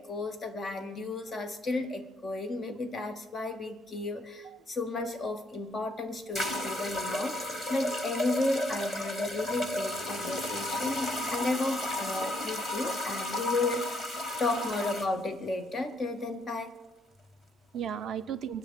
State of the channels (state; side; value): normal; both; correlation 0.70